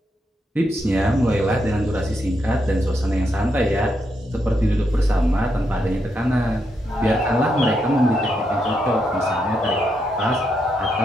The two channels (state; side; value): normal; both; correlation 0.81